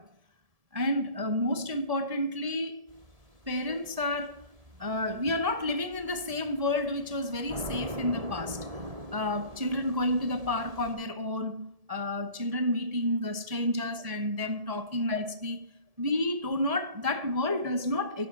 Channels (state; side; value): late; left; 1.7 ms